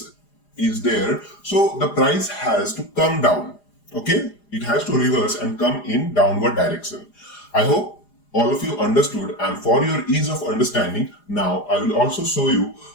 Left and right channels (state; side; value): late; right; 4.9 ms